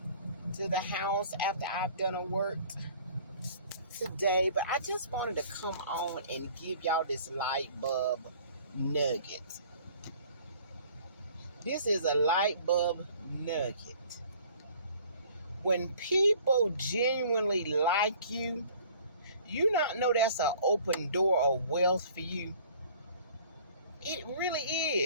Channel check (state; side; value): inverted; both; correlation -0.52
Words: to the house after I've done a work today. But I just wanted to come on and give y'all this light bulb nugget. This is a light bulb nugget. When people genuinely like you, you not know that's an open door of wealth for you. It really